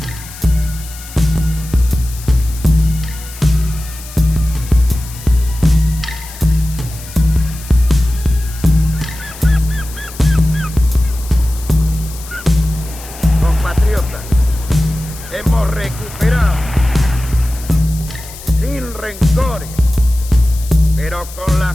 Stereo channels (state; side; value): noise; left; hiss, 16 dB below the sound